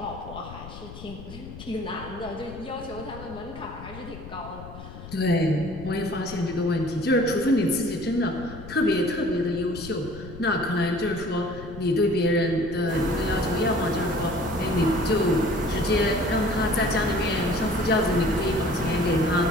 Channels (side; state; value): left; noise; rumble, 14 dB below the sound